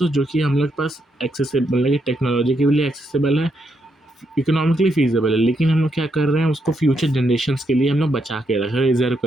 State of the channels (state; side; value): normal; both; correlation 0.79